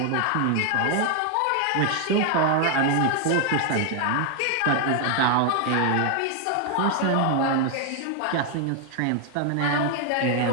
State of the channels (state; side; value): different; both; correlation 0.01